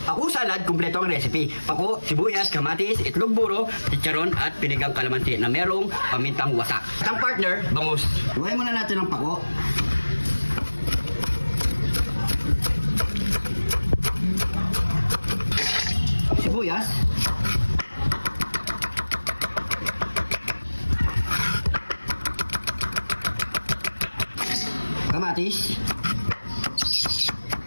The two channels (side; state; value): both; inverted; correlation -1.00